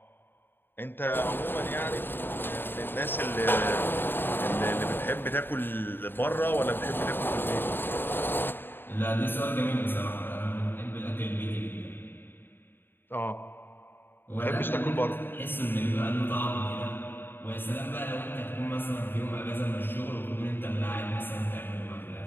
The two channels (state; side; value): late; right; 0.099 ms